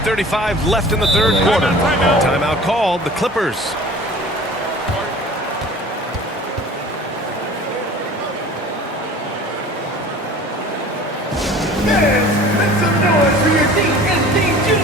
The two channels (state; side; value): normal; both; correlation 0.43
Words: 1:35 left in the third quarter. Timeout called, the Clippers. Make some noise for your DNB